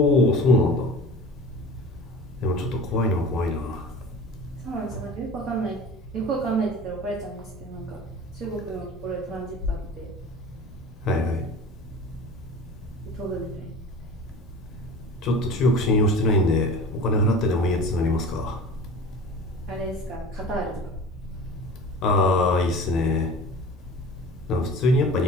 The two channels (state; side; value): normal; both; correlation 0.39